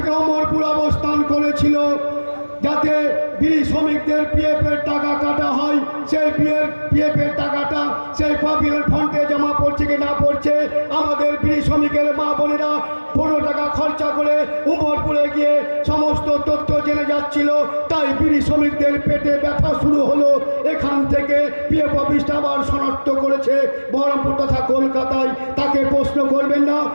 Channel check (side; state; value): both; inverted; correlation -1.00